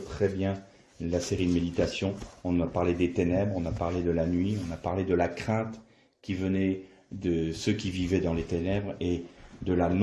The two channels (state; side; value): identical; both; correlation 1.00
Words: très bien la série de méditations. On a parlé des ténèbres, on a parlé de la nuit, on a parlé de la crainte qui venait de ceux qui vivaient dans les ténèbres et de la